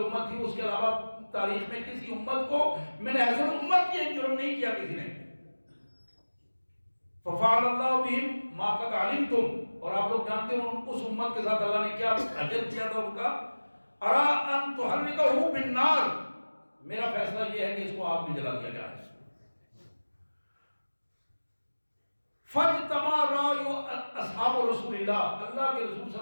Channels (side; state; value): both; inverted; correlation -1.00